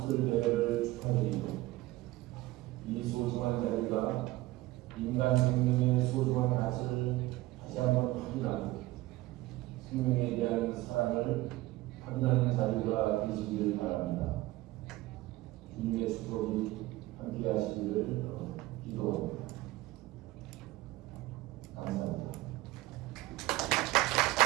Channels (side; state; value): left; quieter; 18.3 dB